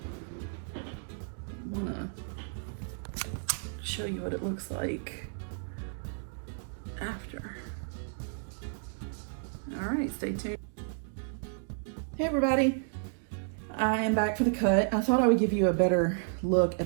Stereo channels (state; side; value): silent; left; digital silence